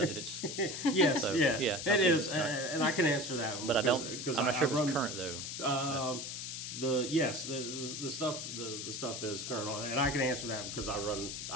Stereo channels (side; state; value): left; noise; hiss, 6 dB below the sound